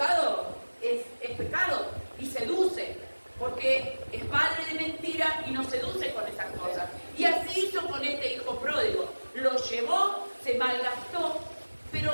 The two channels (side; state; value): both; inverted; correlation -1.00